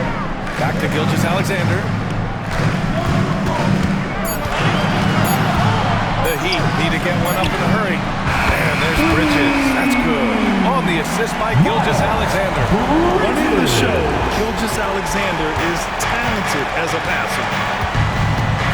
Back to Gilgeous-Alexander. The Heat need to get one up in a hurry. And there's Bridges. That's good. On the assist by Gilgeous-Alexander. Running the show, Gilgeous-Alexander is talented as a passer.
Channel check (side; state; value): both; identical; correlation 1.00